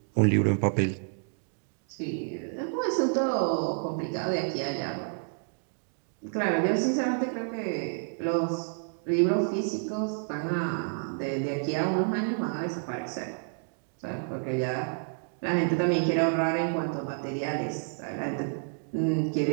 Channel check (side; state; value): left; silent; 58 dB below the other